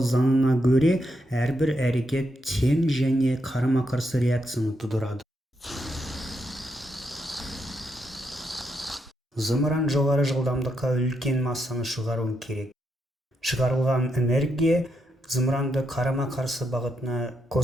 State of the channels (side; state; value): both; normal; correlation 0.81